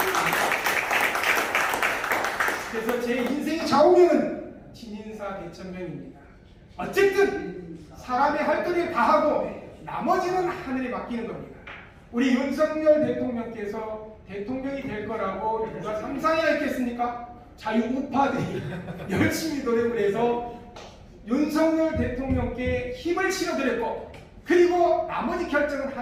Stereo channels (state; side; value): identical; both; correlation 1.00